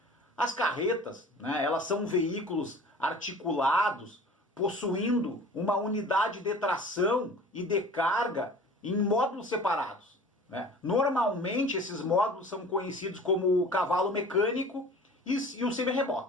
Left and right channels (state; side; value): normal; both; correlation 0.44